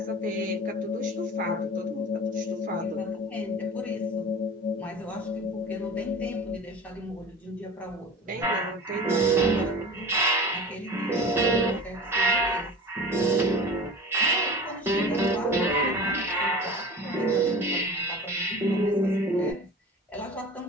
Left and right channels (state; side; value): normal; both; correlation 0.36